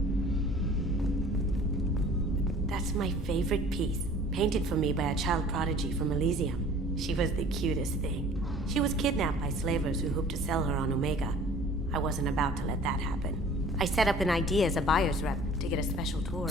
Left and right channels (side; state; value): both; normal; correlation 0.49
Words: That's my favorite piece, painted for me by a child prodigy from Elysium. She was the cutest thing. She was kidnapped by slavers who hoped to sell her on Omega. I wasn't about to let that happen. I set up an idea as a buyer's rep to get a special tour